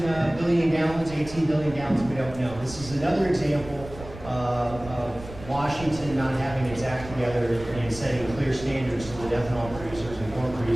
billion gallons, 18 billion gallons, we don't know. This is another example of Washington not having its act together and setting clear standards so that ethanol producers and corn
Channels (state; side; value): noise; right; rumble, 14 dB below the sound